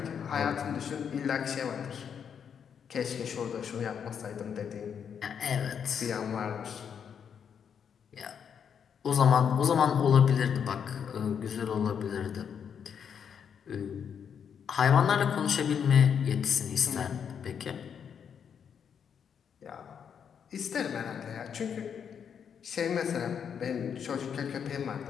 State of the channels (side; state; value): right; quieter; 7.6 dB